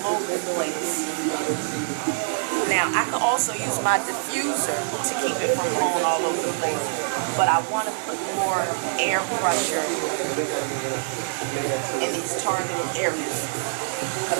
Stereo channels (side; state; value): left; silent; 62 dB below the other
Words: the place. Now, I can also use my diffuser to keep it from blowing all over the place, but I want to put more air pressure in these targeted areas because